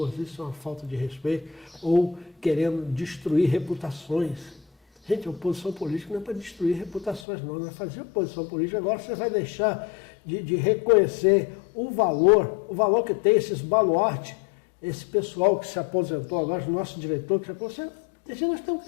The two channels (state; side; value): drops out; right; at 7.2 s